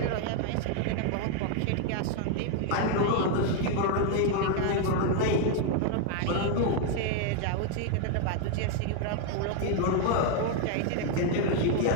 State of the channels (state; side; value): different; both; correlation 0.00